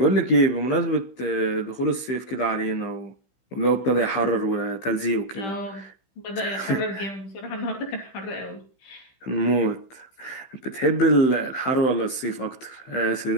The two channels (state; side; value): late; right; 15 ms